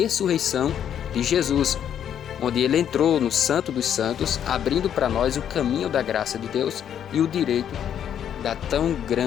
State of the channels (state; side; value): quieter; right; 9.4 dB